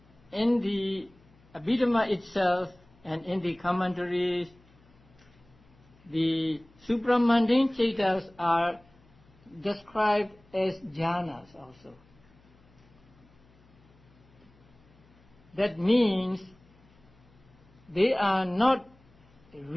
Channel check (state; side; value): noise; left; hum, 29 dB below the sound